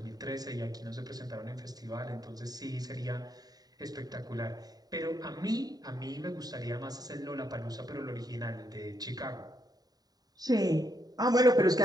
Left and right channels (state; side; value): late; left; 0.18 ms